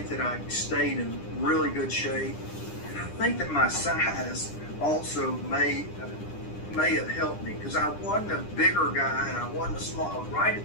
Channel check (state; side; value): late; right; 9.9 ms